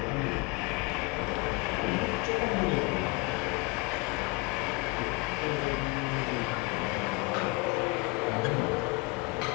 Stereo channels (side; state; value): right; quieter; 26.6 dB